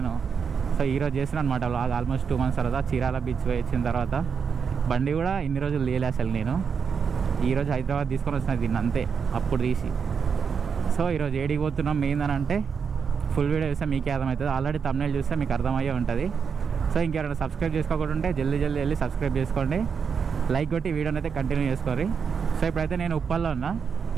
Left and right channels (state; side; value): quieter; left; 6.3 dB